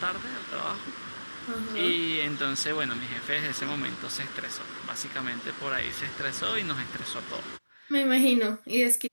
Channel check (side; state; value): both; inverted; correlation -1.00